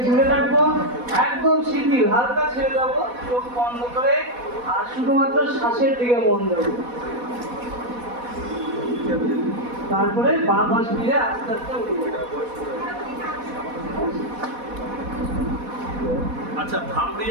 দূরে রাখবো, একদম শিথিল, হালকা ছেড়ে দেবো, চোখ বন্ধ করে আর শুধুমাত্র শ্বাসের দিকে মন দেবো। তারপরে বাঁ পাশ ফিরে আস্তে আস্তে উঠবো। আচ্ছা, ভামড়ি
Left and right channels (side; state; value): left; late; 4.1 ms